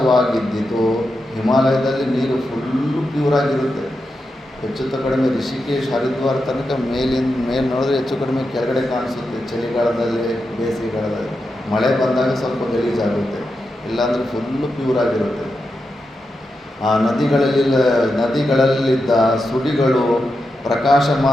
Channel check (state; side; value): normal; both; correlation 0.88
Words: ಹಿಮಾಲಯದಲ್ಲಿ ನೀರು ಫುಲ್ಲು ಪ್ಯೂರಾಗಿರುತ್ತೆ. ಹೆಚ್ಚು ಕಡಿಮೆ ರಿಷಿಕೇಶ್, ಹರಿದ್ವಾರ ತನಕ ಮೇಲೆ ನೋಡಿದ್ರೆ ಹೆಚ್ಚು ಕಡಿಮೆ ಕೆಳಗಡೆ ಕಾಣಿಸುತ್ತೆ. ಚಳಿಗಾಲದಲ್ಲಿ, ಬೇಸಿಗೆಗಾಲದಲ್ಲಿ, ಮಳೆ ಬಂದಾಗ ಸ್ವಲ್ಪ ಗಲೀಜಾಗುತ್ತೆ, ಇಲ್ಲಾಂದರೆ ಫುಲ್ಲು ಪ್ಯೂರಾಗಿರುತ್ತೆ. ಆ ನದಿಗಳಲ್ಲಿದ್ದ ಸುಡಿಗಳು